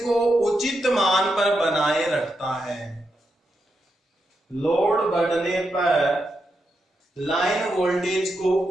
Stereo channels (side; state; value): both; normal; correlation 0.85